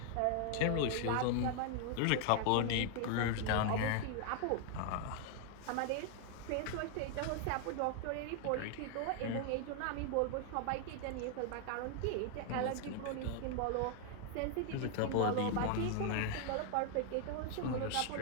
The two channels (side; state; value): both; different; correlation 0.00